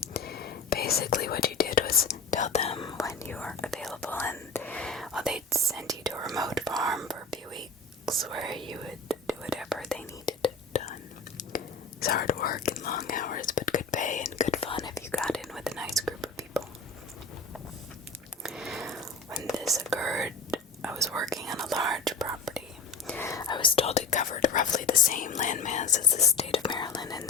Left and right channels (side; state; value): right; quieter; 4.1 dB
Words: Basically, what you did was tell them when you were available, and they'd send you to a remote farm for a few weeks where you would do whatever they needed done. It's hard work and long hours, but good pay and good fun if you got in with a nice group of people. When this occurred, I was working on a large property. I was told it covered roughly the same landmass as the state of Maryland in